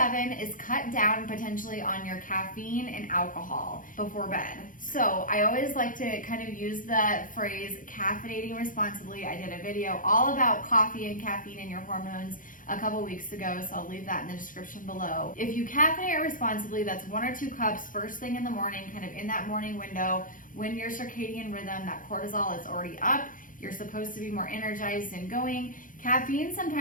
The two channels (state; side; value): late; right; 0.39 ms